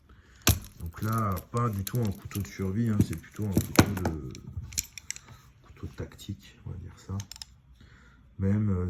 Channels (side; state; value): both; identical; correlation 1.00